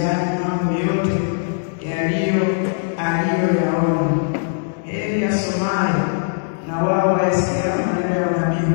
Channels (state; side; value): silent; right; digital silence